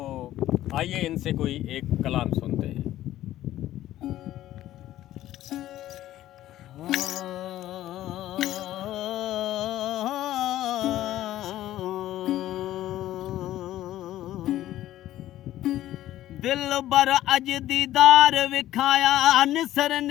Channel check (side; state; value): right; quieter; 13.8 dB